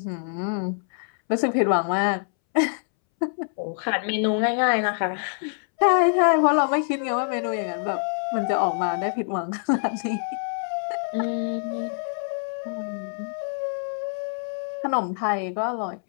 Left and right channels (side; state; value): right; silent; 62 dB below the other